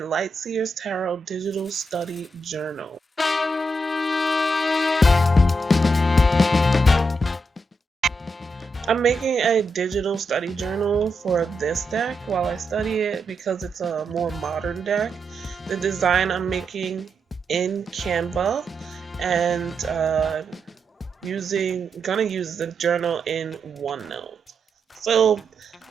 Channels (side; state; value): both; normal; correlation 0.84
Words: Seers Tarot Digital Study Journal. I'm making a digital study journal for this deck while I study it because it's a more modern deck. The design I'm making in Canva and gonna use the journal in OneNote. So